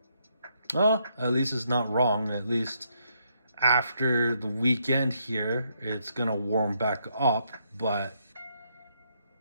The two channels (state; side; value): inverted; both; correlation -0.75